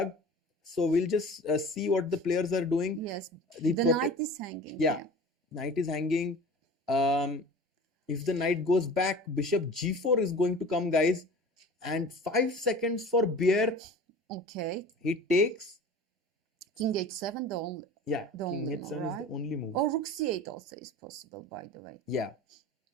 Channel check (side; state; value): both; normal; correlation 0.40